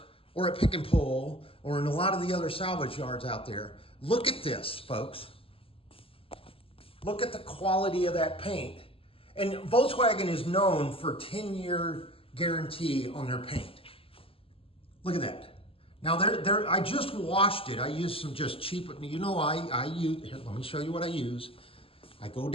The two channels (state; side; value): late; right; 0.27 ms